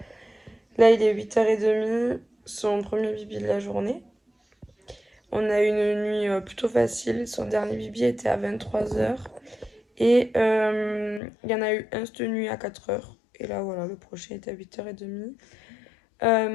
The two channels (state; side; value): drops out; right; at 11.2 s